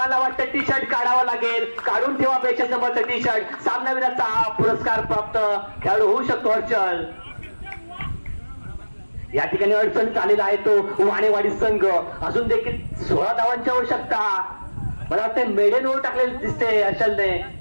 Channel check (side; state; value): both; inverted; correlation -1.00